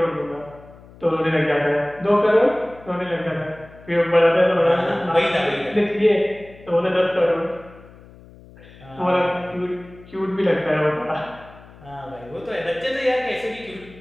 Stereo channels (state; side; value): noise; left; hum, 22 dB below the sound